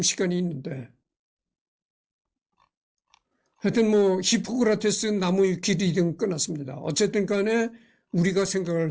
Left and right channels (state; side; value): identical; both; correlation 1.00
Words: 시간이 있는데 하여튼 히포크라테스 나무 길이든 끝났습니다. 어쨌든 간에 우리가 생각할